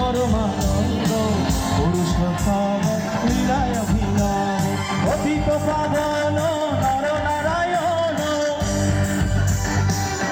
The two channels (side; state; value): both; identical; correlation 1.00